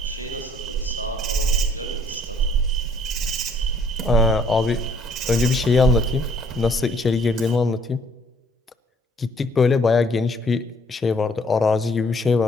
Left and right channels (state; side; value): normal; both; correlation 0.62